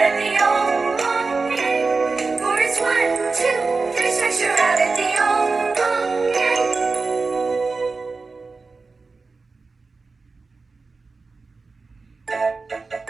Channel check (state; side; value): quieter; left; 4.1 dB